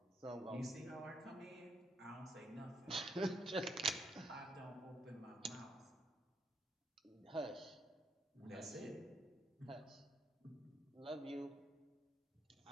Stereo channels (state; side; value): normal; both; correlation 0.74